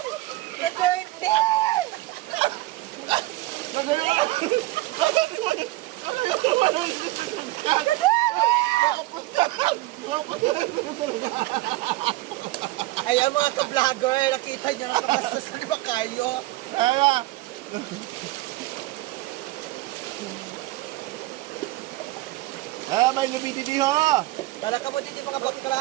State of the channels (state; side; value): quieter; left; 18.9 dB